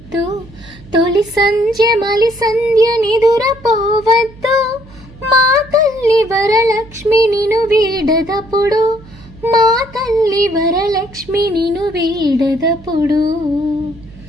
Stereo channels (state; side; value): noise; right; hum, 21 dB below the sound